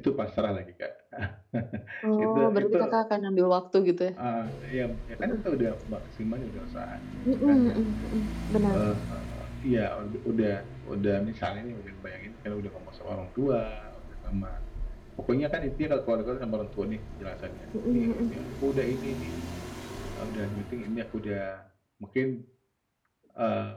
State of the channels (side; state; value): both; identical; correlation 1.00